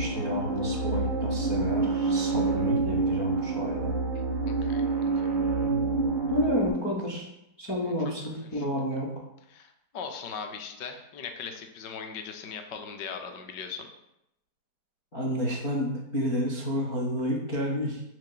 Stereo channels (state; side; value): late; right; 4.4 ms